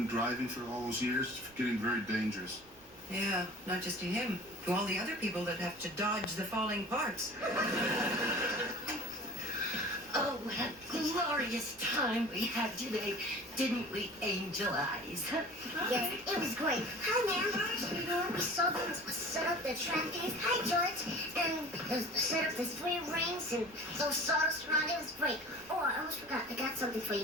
driving for all those years? It's getting very dangerous. Yeah, not just to him, to all the other people that have to dodge the falling parts. Oh, what a glorious time we had today, didn't we, Angel Eyes? Yes, it was great. Hi, ma'am. We saw them set up the trampolines. Hi, George. And set up the 3 rings and those sawdust around. It was great. Oh, I almost forgot. I got something for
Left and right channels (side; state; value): right; noise; rumble, 26 dB below the sound